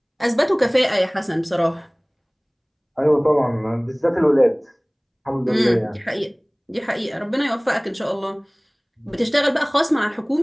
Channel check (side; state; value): both; identical; correlation 1.00